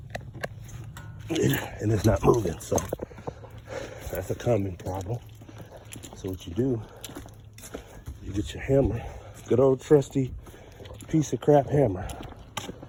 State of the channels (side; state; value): both; identical; correlation 1.00